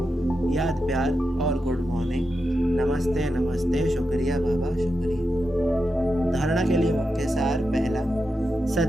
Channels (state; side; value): normal; both; correlation 0.88